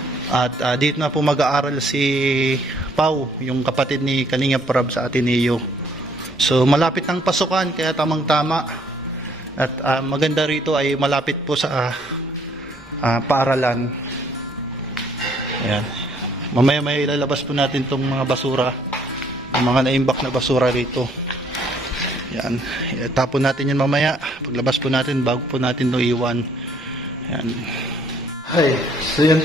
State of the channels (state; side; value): normal; both; correlation 0.64